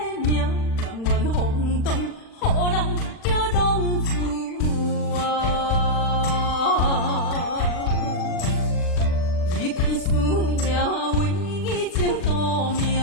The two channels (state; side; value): late; right; 40 ms